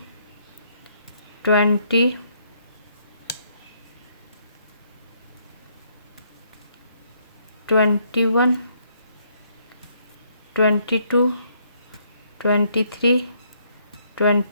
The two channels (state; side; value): inverted; both; correlation -0.70